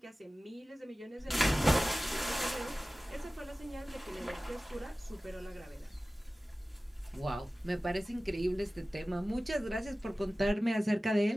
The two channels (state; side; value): normal; both; correlation 0.97